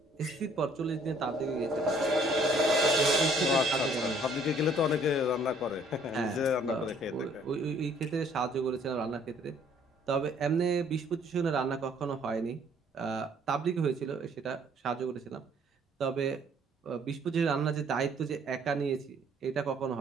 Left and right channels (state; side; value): normal; both; correlation 0.60